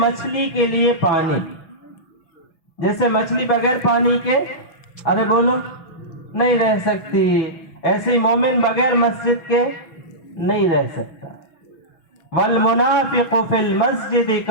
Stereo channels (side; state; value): right; late; 6.2 ms